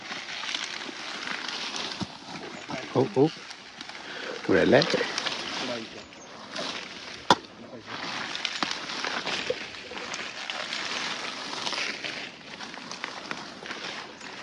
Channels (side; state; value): both; identical; correlation 1.00